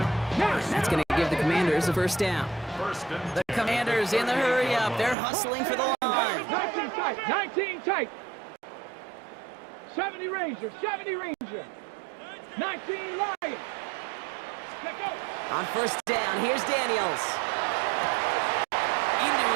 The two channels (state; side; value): drops out; left; at 5.2 s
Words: that's going to give the Commanders a 1st down. The Commanders in the hurry up. They're hustling for the line. 19 tight, 19 tight. 70 Ranger, 19 Lions. On 1st down, here's Daniels. Into